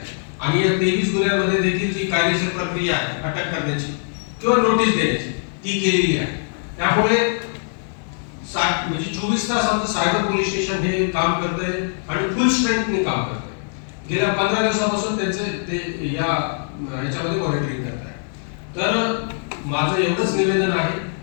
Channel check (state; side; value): silent; right; 55 dB below the other